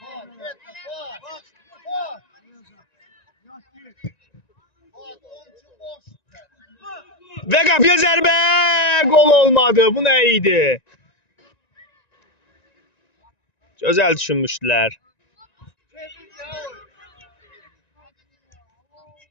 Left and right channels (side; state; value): right; late; 1.9 ms